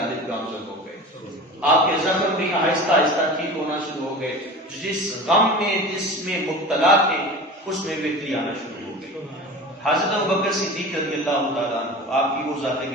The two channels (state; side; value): normal; both; correlation 0.34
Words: گامزن ہو گئے. آپ کے زخم بھی آہستہ آہستہ ٹھیک ہونا شروع ہو گئے. جس غم میں جس میں مبتلا تھے اس میں بہتری آنا شروع ہو گئی. حضرت ابوبکر صدیق رضی اللہ تعالیٰ عنہ آپ کی وہ ذات